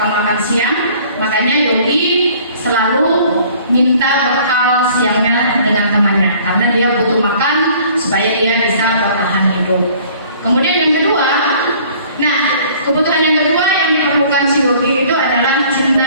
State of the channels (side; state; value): both; inverted; correlation -0.53